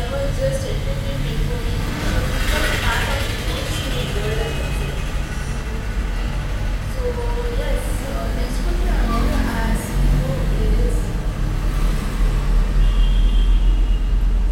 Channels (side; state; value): both; identical; correlation 1.00